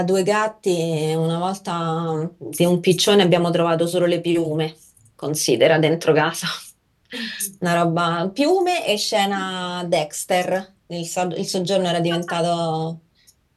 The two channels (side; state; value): both; identical; correlation 1.00